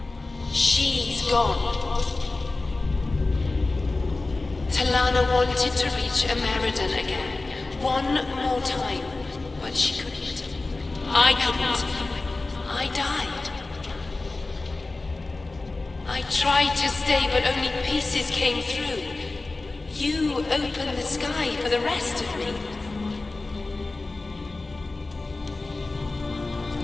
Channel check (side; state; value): right; quieter; 3.3 dB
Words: She's gone. Talana wanted to reach Ameridan again. One more time. But she couldn't. I couldn't. I died. I tried to stay, but only pieces came through. You opened the sky for the rest of me.